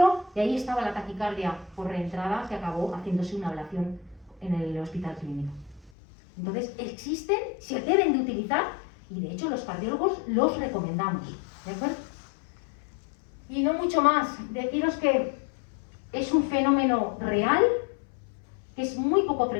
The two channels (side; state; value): right; drops out; at 5.9 s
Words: y ahí estaba la taquicardia por reentrada que acabó haciéndose una ablación en el hospital clínico. Entonces existen, se deben de utilizar y de hecho los cardiólogos los recomendamos, ¿de acuerdo? Y no mucho más, deciros que es un fenómeno real, que es muy poco